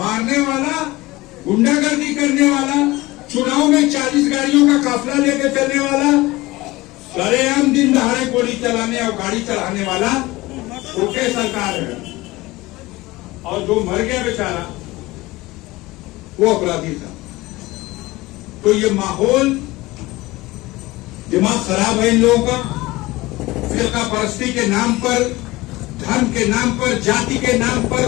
वाला, गुंडागर्दी करने वाला, चुनाव में 40 गाड़ियों का काफिला लेकर चलने वाला, सरेआम दिन दहाड़े गोली चलाने और गाड़ी चलाने वाला छोटे सरकार है, और जो मर गया बेचारा वो अपराधी था। तो ये माहौल, दिमाग खराब है इन लोगों का। फिरका परस्ती के नाम पर, धर्म के नाम पर, जाति के नाम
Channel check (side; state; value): right; quieter; 20.0 dB